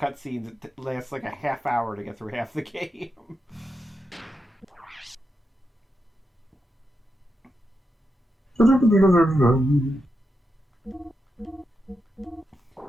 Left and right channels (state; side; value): normal; both; correlation 0.86